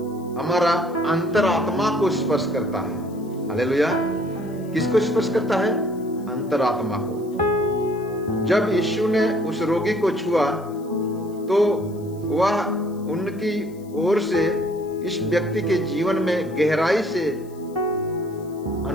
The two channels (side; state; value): left; noise; hiss, 27 dB below the sound